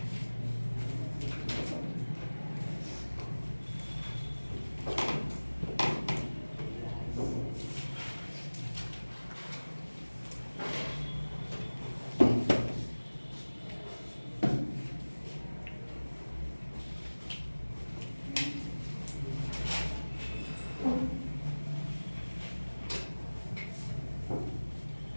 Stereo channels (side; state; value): both; inverted; correlation -1.00